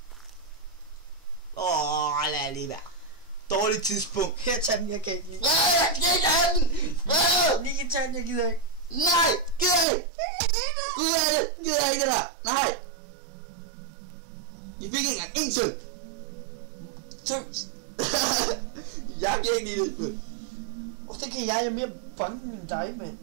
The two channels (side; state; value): left; drops out; at 9.9 s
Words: Lad lige være. Dårligt tidspunkt. Her, tag den, jeg kan ikke lide. Jeg kan ikke have den! Nicky, tag den, jeg gider ikke. Nej, gider ikke! Gider ikke det der! Nej! Vi fik ikke engang en søn! Tøs. Jeg kan ikke lide det. Det kan jeg er mere bange end dig, mand.